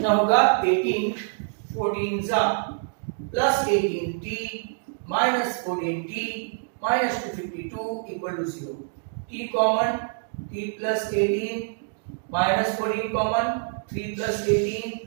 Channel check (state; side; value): silent; left; digital silence